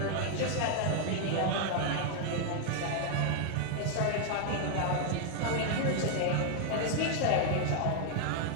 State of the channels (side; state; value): both; different; correlation 0.00